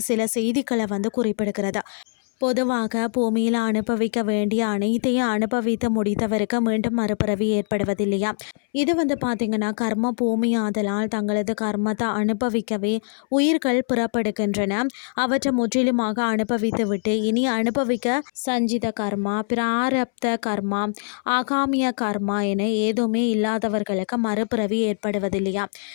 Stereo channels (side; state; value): right; silent; 63 dB below the other